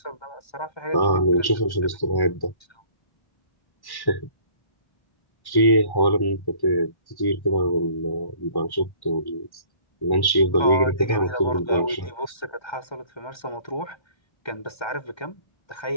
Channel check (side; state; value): right; late; 1.1 ms